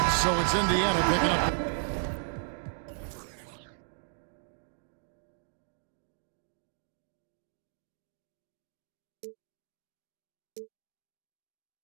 So it's Indiana picking up.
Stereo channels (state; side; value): silent; left; digital silence